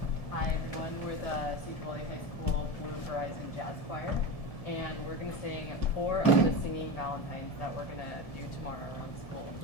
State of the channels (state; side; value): late; right; 1.7 ms